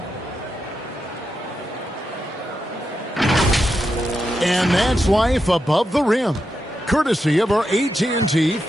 And that's life above the rim. Courtesy of our AT&T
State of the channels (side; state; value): both; normal; correlation 0.86